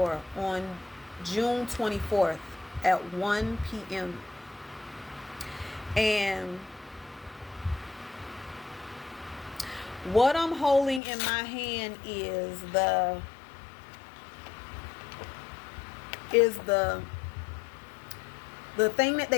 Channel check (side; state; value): right; drops out; at 11.0 s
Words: on June 24th at 1 p.m. And what I'm holding in my hand is the thing that